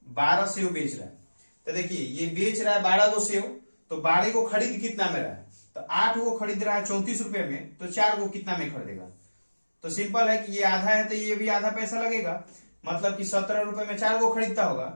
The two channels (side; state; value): both; inverted; correlation -1.00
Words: 12 सेव बेच रहा है। तो देखिए, ये बेच रहा है 12 को सेव, तो 12 को खरीद कितना में रहा है, तो 8 को खरीद रहा है 34 रुपए में, तो 4 को कितना में खरीदेगा। तो सिंपल है कि ये आधा है तो ये भी आधा पैसा लगेगा, मतलब कि 17 रुपए में 4 को खरीदता होगा।